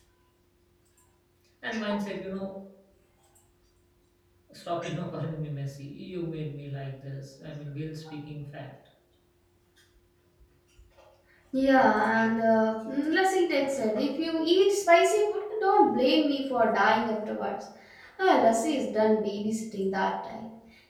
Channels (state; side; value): identical; both; correlation 1.00